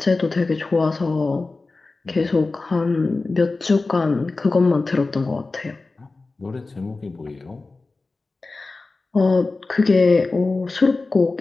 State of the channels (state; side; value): quieter; right; 3.6 dB